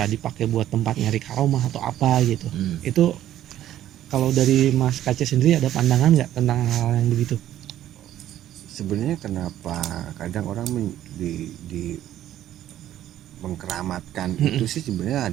dipakai buat tempat nyari karomah atau apa gitu. Itu kalau dari Mas Kace sendiri ada pandangan nggak tentang hal yang begitu? Sebenarnya kenapa kadang orang di mengkeramatkan itu sih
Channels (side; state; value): left; quieter; 12.3 dB